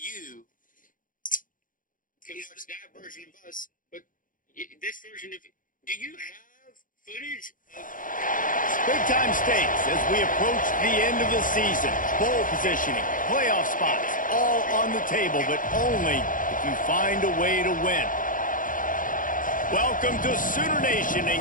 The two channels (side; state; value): right; late; 0.39 ms